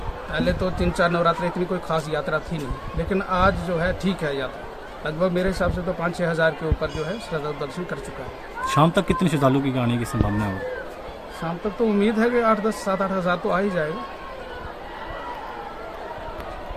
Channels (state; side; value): identical; both; correlation 1.00